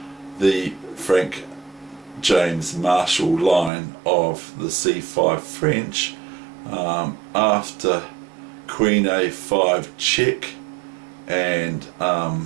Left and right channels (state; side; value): drops out; left; at 3.7 s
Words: Frank James Marshall line of the C5 French, after Queen A5 check and